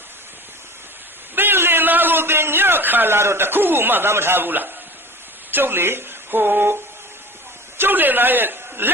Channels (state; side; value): normal; both; correlation 0.39